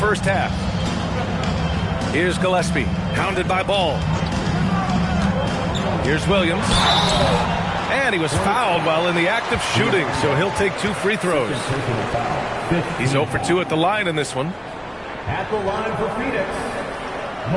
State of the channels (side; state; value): both; identical; correlation 1.00